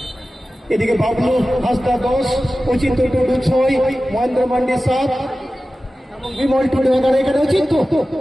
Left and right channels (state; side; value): normal; both; correlation 0.95